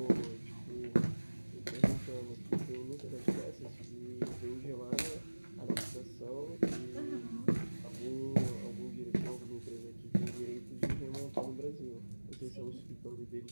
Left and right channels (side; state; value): both; inverted; correlation -1.00